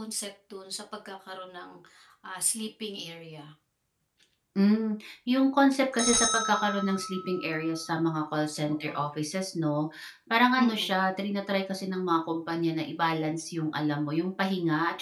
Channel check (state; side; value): identical; both; correlation 1.00